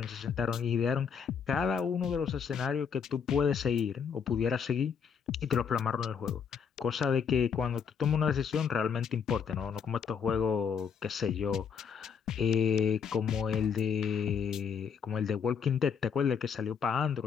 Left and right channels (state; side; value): quieter; right; 6.8 dB